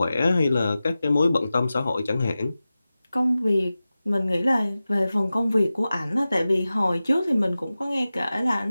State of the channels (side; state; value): both; inverted; correlation -0.95